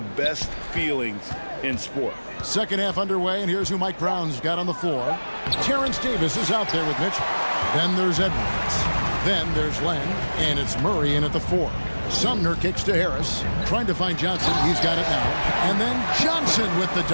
best feelings in sport. Second half underway, and here's who Mike Brown's got on the floor. Terrence Davis is out there with Mitchell. Then there's Edwards. Then there's Len, and it's Murray in at the 4. Sumner kicks to Harris, trying to find Johnson. He's got it now. And then Johnson with the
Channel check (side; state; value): both; inverted; correlation -1.00